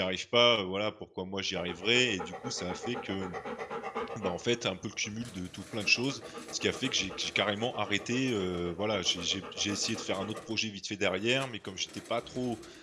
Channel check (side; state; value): both; identical; correlation 1.00